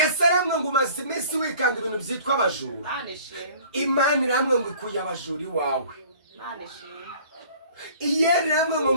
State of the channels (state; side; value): inverted; both; correlation -0.50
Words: aramwe ngo umaze iminsi wikanga ibintu byitwa abajura. Imana iramwe ngo ikuye abajura iwawe. Iyeri iramwe ngo